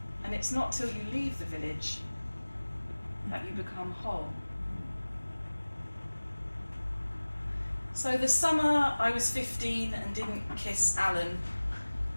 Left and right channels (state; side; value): inverted; both; correlation -1.00